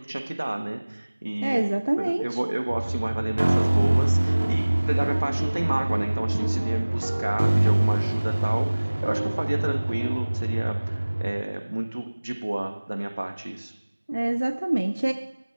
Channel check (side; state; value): both; inverted; correlation -1.00